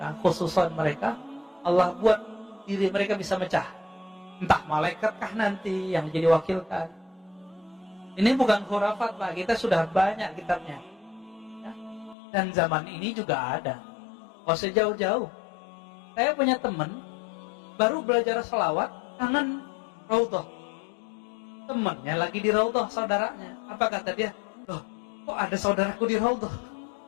Allah buat diri mereka bisa mecah. Entah malaikatkah nanti yang jadi wakilkan. Ini bukan khurafat Pak, kita sudah banyak kitabnya. Ya. Dan zaman ini juga ada. Oh sejauh-jauh. Saya punya teman baru belajar selawat, kangen raudhah. Temannya lagi di raudhah saudaranya. Apa kata dia? Loh, kok ada saudaraku di raudhah?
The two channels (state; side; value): drops out; right; at 12.2 s